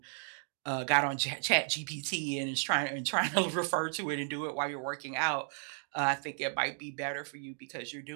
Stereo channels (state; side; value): silent; left; 55 dB below the other